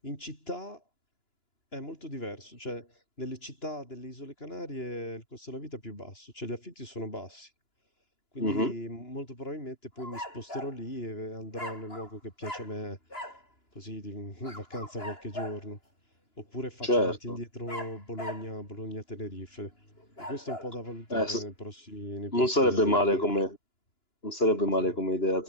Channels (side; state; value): right; late; 2.9 ms